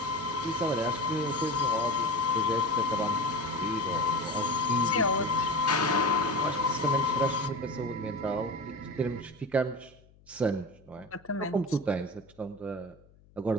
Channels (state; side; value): noise; left; hum, 28 dB below the sound